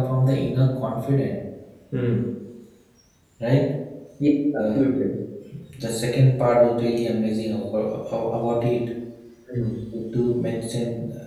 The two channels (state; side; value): identical; both; correlation 1.00